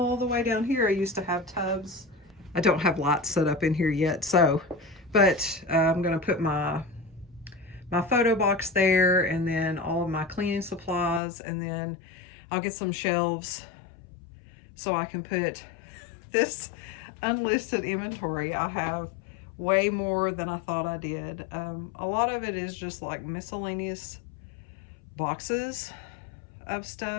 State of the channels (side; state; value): right; drops out; at 11.2 s